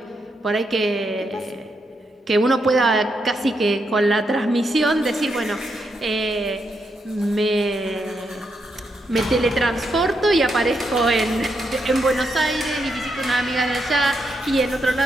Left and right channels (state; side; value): normal; both; correlation 0.81